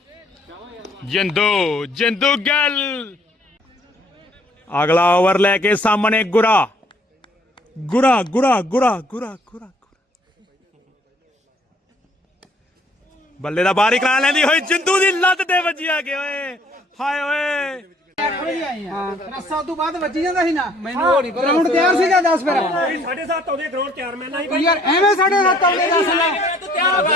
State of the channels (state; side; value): normal; both; correlation 0.61